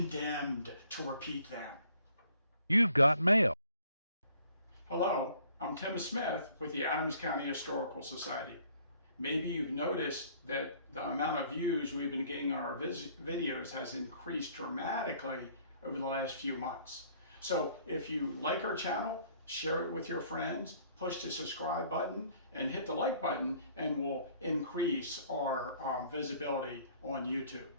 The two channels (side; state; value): both; inverted; correlation -0.59